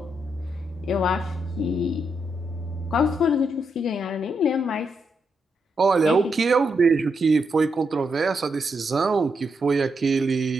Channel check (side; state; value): both; normal; correlation 0.82